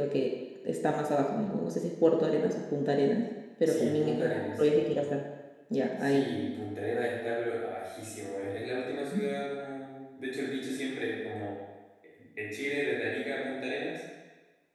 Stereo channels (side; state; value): both; identical; correlation 1.00